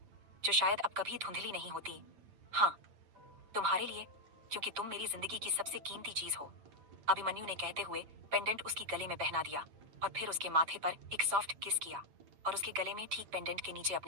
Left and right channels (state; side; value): late; left; 8.8 ms